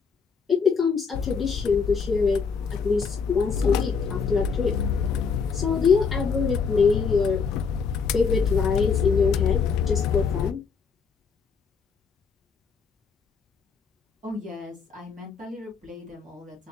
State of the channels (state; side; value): quieter; right; 5.6 dB